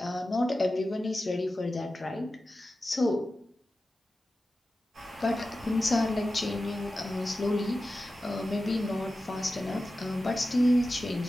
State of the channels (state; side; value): normal; both; correlation 0.93